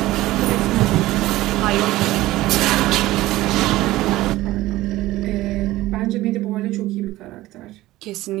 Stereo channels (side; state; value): left; quieter; 17.0 dB